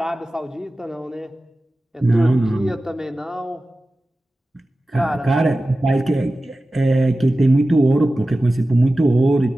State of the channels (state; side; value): normal; both; correlation 0.95